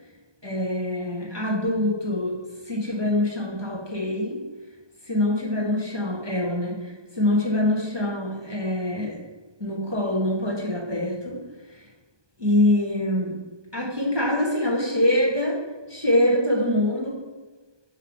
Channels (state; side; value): late; left; 1.2 ms